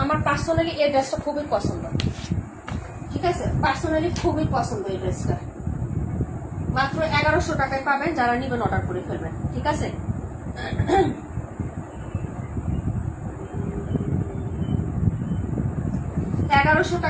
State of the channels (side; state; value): both; identical; correlation 1.00